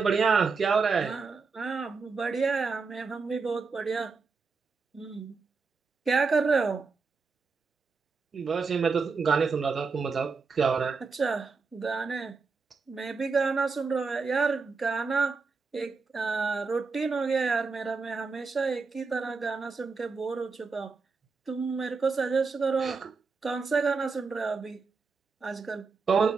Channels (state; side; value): quieter; left; 4.7 dB